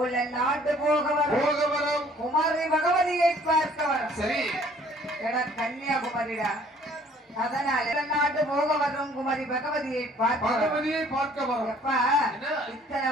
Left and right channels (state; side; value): normal; both; correlation 0.57